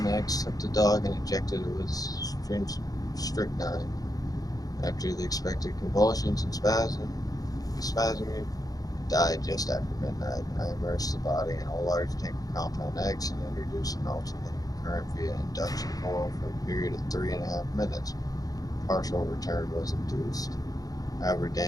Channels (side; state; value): right; late; 0.18 ms